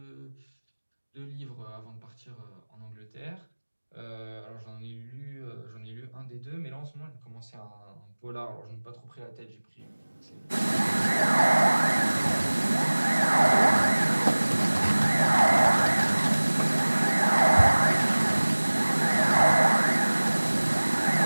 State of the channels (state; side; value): inverted; both; correlation -1.00